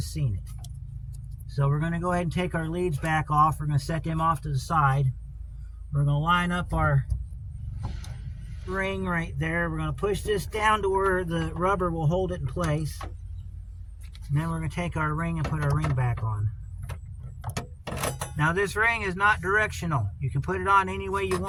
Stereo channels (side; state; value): both; identical; correlation 1.00